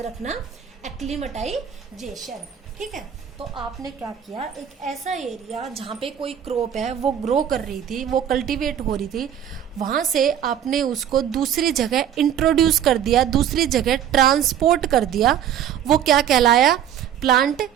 रखना, एक्लीमेटाइजेशन, ठीक है। तो आपने क्या किया, एक ऐसा एरिया जहाँ पे कोई क्रॉप है वो ग्रो कर रही थी, वो कल्टीवेट हो रही थी, वहां से आपने उसको दूसरी जगह इंट्रोड्यूस कर दिया, दूसरी जगह ट्रांसपोर्ट कर दिया। वो क्या कहलाया, प्लांट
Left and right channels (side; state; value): left; quieter; 9.7 dB